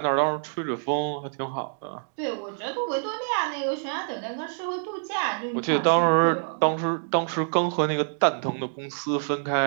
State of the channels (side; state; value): left; silent; digital silence